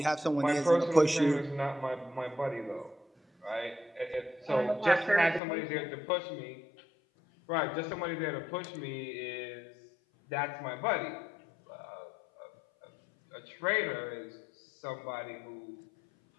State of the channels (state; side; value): drops out; right; at 5.4 s